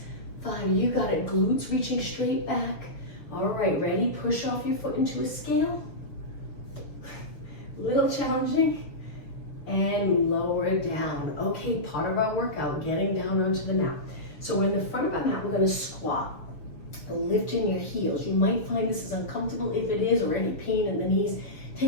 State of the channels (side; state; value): right; late; 6.7 ms